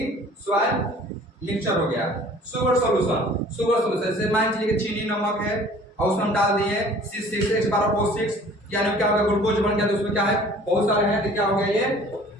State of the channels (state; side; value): normal; both; correlation 0.50